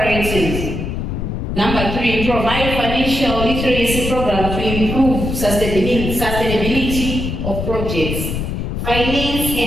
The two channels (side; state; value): left; noise; rumble, 3 dB below the sound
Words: Number 3, provide financial literacy programs to improve sustainability of projects. Finance